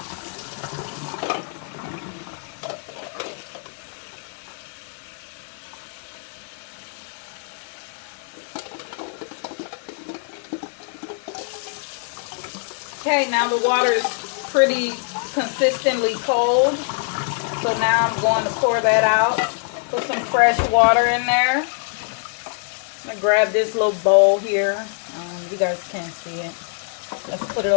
Okay, now the water is pretty consistently cold. So now I'm going to pour that out. Put some fresh water in there. I'm going to grab this little bowl here. You guys can't see it. Let's put it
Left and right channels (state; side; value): silent; right; 58 dB below the other